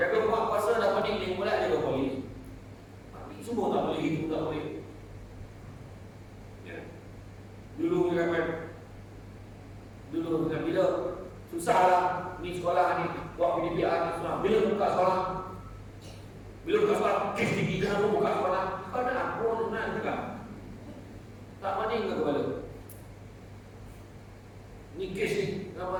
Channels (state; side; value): identical; both; correlation 1.00